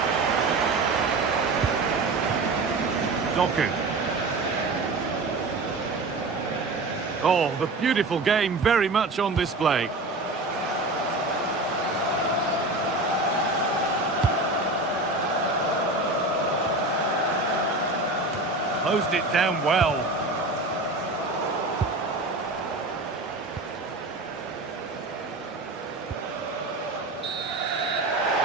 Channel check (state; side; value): quieter; left; 3.0 dB